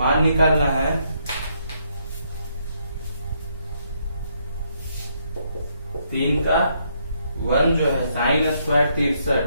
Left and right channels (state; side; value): inverted; both; correlation -0.74